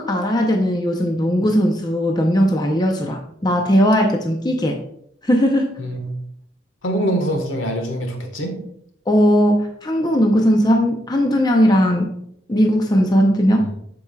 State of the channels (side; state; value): both; normal; correlation 0.79